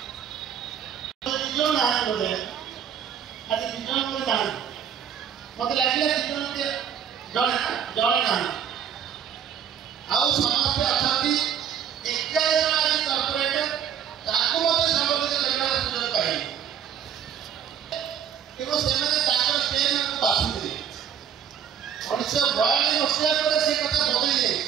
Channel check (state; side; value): quieter; left; 8.5 dB